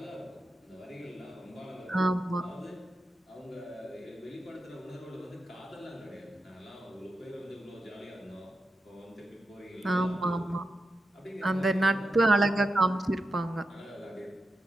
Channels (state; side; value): normal; both; correlation 0.88